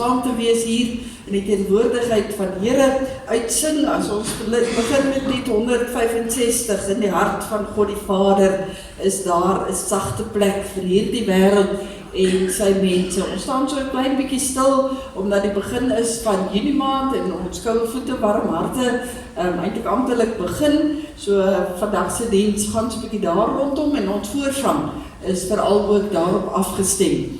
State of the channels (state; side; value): identical; both; correlation 1.00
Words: te wees hier in die teenwoordigheid van die Here uitsing as ons begin met lied 165 in die hart van God die Vader is daar 'n sagte plek vir hierdie wêreld en sy mense. Ons staan so 'n klein bietjie stil omdat die begin is van Junie maand en ons koue voete warm harte eintlik amptelik begin. So vandag se diens gaan so 'n bietjie daar rondom en ons voorsang is veral ook daarop afgestem.